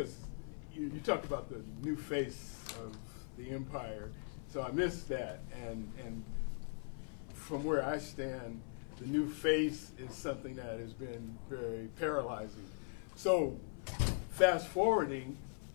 you talked about the new face of the empire, so I missed that, and from where I stand, the new face is something that has been very paralyzing. So fast forwarding,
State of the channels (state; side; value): silent; right; 51 dB below the other